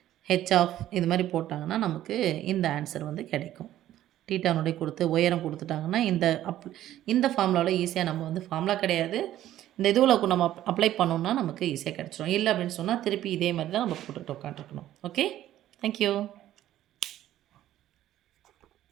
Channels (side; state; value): left; quieter; 13.0 dB